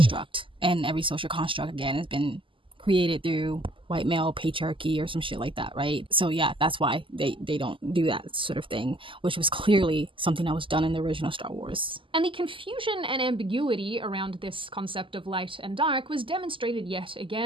And every social construct, again, has been created through white male patriarchy or some shit like that, right? So yeah, that's why they don't do that sort of thing, which was clearly something that was done in the original Star Wars. And the confusion and ambiguity around this concept of light and dark was demonstrated yet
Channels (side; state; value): left; late; 0.25 ms